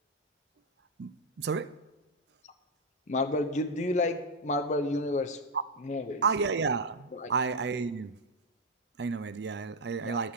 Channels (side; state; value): both; normal; correlation 0.03